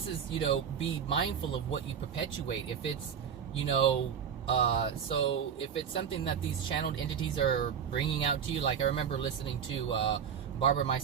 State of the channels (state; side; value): quieter; left; 7.7 dB